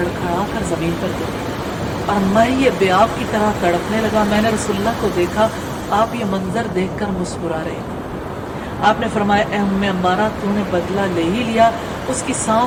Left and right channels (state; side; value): identical; both; correlation 1.00